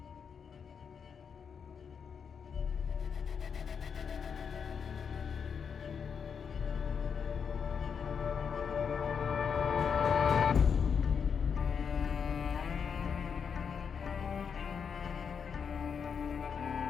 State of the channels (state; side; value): quieter; right; 6.6 dB